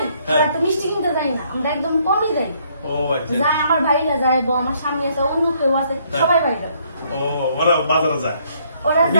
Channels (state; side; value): inverted; both; correlation -0.67